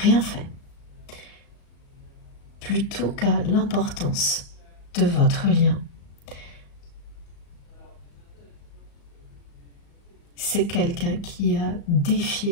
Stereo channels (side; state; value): right; late; 35 ms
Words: fait, plutôt qu'à l'importance de votre lien. C'est quelqu'un qui a